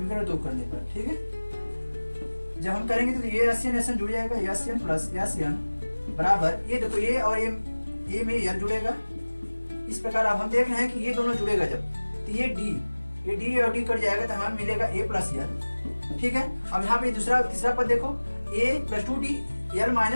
2 करने पर, ठीक है। जब हम करेंगे तो ये SN जुड़ जाएगा, SN + SN बराबर ये देखो ये और ये में यल जुड़ेगा। इस प्रकार अब हम देख रहे हैं कि ये दोनों जुड़ेगा जब, तो ये D और D कट जाएगा तो हमें मिलेगा a + l, ठीक है। अब यहाँ पे तीसरा पद देखो, a + 2d l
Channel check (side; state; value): both; inverted; correlation -1.00